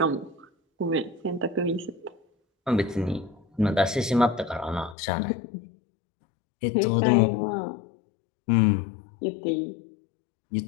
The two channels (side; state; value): right; drops out; at 5.0 s